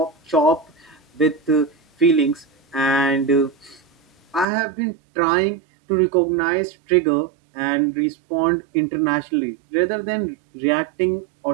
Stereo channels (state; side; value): drops out; left; at 4.5 s